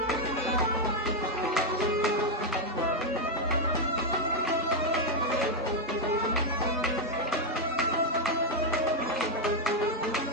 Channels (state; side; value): normal; both; correlation 0.02